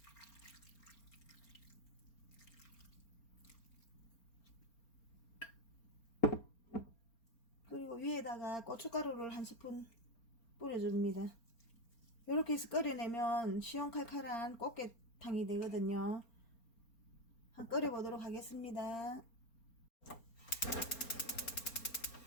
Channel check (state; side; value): late; right; 4.3 ms